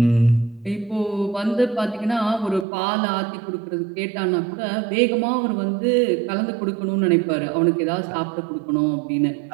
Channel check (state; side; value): drops out; left; at 2.7 s